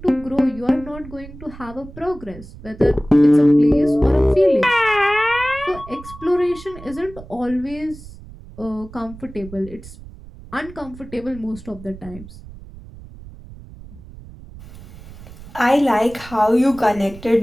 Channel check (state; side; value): noise; right; rumble, 17 dB below the sound